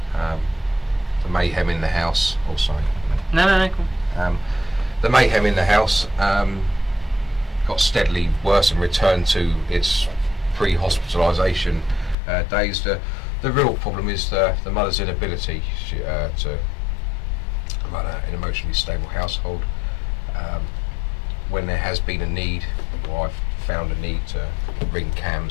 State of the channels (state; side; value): drops out; right; at 12.2 s